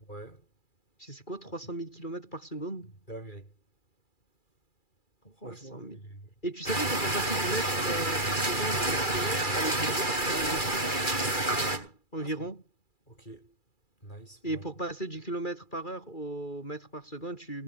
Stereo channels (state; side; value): late; right; 2.3 ms